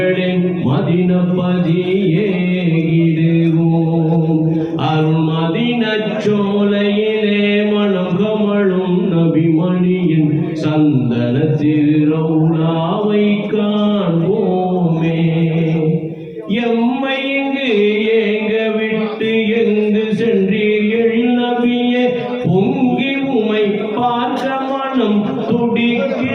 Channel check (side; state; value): both; identical; correlation 1.00